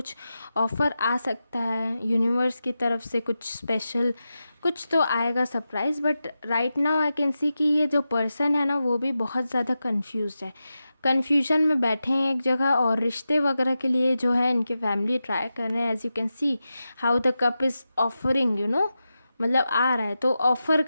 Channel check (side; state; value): both; inverted; correlation -0.91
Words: ऑफ़र आ सकता है यूनिवर्स की तरफ से, कुछ स्पेशल कुछ तो आएगा surprise. But right now I can सी कि ये जो पर्सन है ना, वो भी बहुत ज़्यादा कन्फ्यूज़ है, कन्फ्यूजन में बैठे हैं एक जगह। और रिश्ते वगैरह के लिए जो है इनके फैमिली ट्राई कर रहे हैं। As you can see how the cup is offering, you know, मतलब आ रहा है तो ऑफ़र